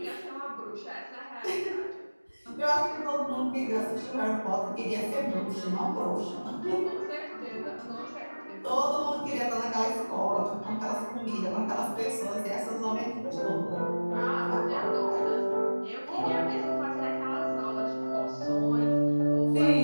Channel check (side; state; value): both; inverted; correlation -1.00